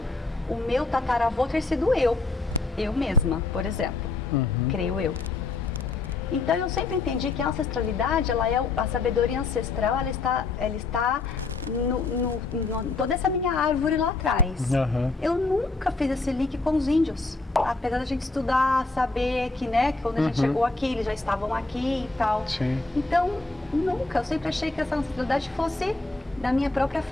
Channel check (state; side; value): quieter; right; 3.6 dB